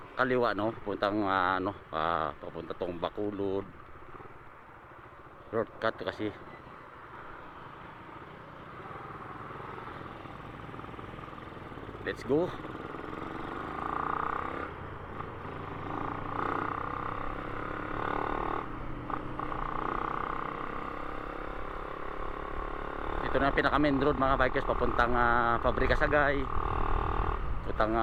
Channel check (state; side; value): identical; both; correlation 1.00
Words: kaliwa puntang papunta tong Bacolod. Shortcut kasi. Let's go. Ito na pinaka main road mga bikers papuntang Pabrika Sagay, papuntang